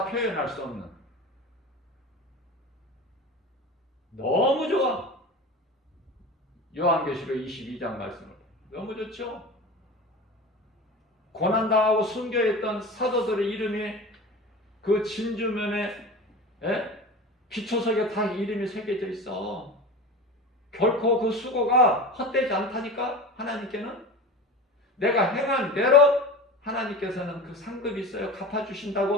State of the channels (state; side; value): normal; both; correlation 0.32